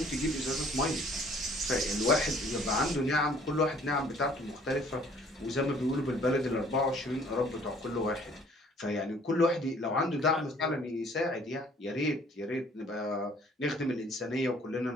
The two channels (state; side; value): normal; both; correlation 0.57